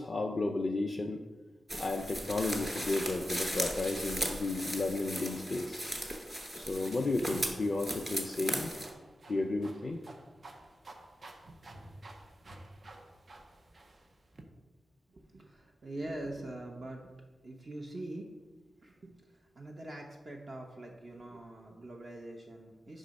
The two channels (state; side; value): normal; both; correlation 0.90